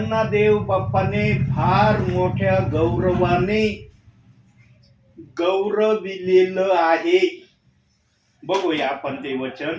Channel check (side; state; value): both; identical; correlation 1.00